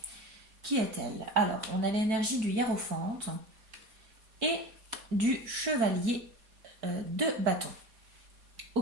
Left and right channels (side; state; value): left; late; 4.5 ms